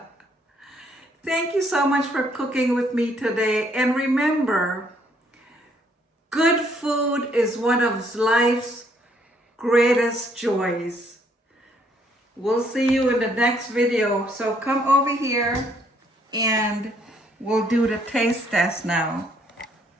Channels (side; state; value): both; normal; correlation 0.68